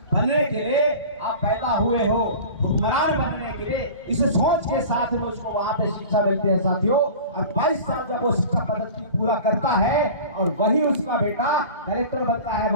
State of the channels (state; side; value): inverted; both; correlation -0.38